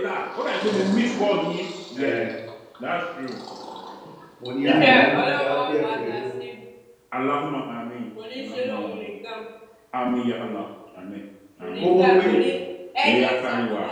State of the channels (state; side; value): identical; both; correlation 1.00